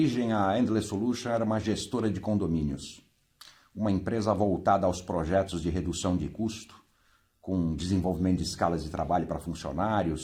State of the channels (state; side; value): identical; both; correlation 1.00